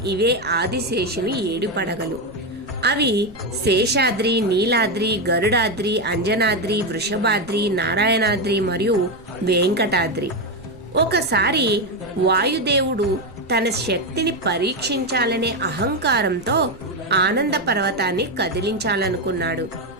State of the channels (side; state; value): right; noise; rumble, 24 dB below the sound